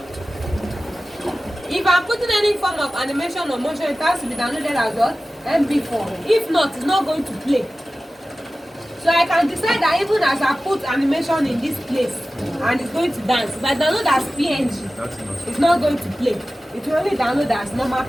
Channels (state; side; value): normal; both; correlation 0.96